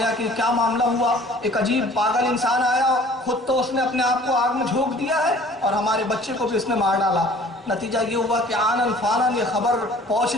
کہ کیا معاملہ ہوا. ایک عجیب پاگل انسان آیا, خود تو اس نے اپنے آپ کو آگ میں جھونک دیا ہے اور ہمارے بچے کو بھی اس نے مار ڈالا. نتیجہ یہ ہوا کہ آنن فانن یہ خبر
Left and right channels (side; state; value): both; normal; correlation 0.51